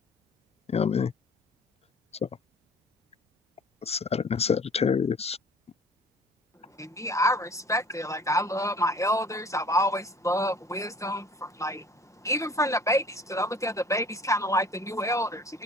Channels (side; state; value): both; normal; correlation 0.49